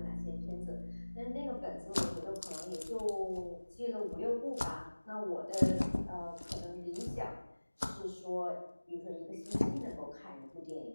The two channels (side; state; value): both; inverted; correlation -1.00